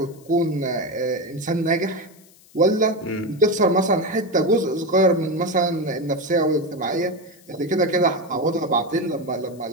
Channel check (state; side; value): noise; left; hiss, 27 dB below the sound